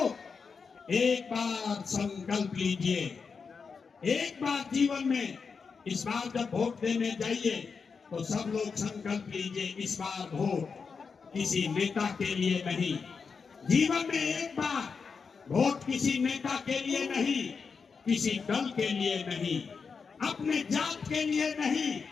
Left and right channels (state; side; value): quieter; right; 5.4 dB